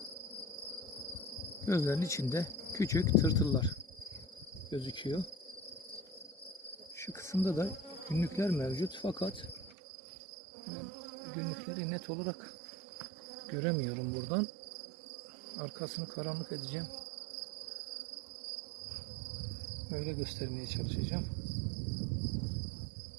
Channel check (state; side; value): drops out; left; at 9.7 s